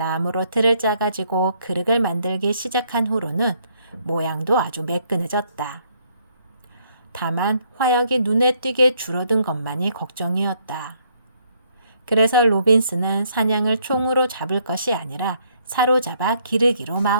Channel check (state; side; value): inverted; both; correlation -0.69